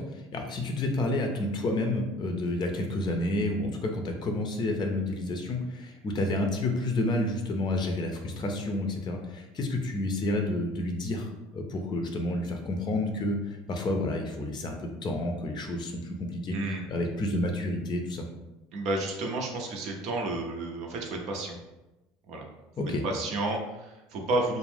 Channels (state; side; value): normal; both; correlation 0.52